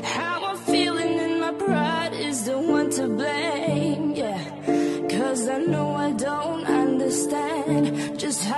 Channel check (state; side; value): identical; both; correlation 1.00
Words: How I'm feeling and my pride is the one to blame. Yeah, 'cause I know I don't understand just